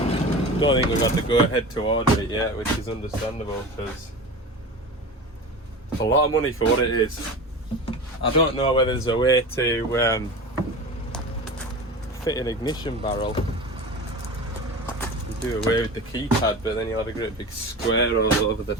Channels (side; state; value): both; normal; correlation 0.31